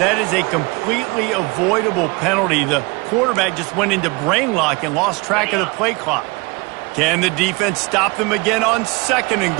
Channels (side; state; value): left; quieter; 26.9 dB